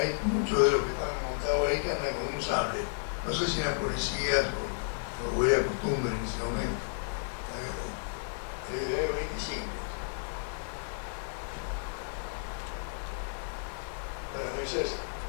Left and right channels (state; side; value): silent; right; digital silence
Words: muchos de los que están montados ahí que andan con un sable. No sé si eran policías o era costumbre en ese momento. Desde el año 25. Bueno, ese es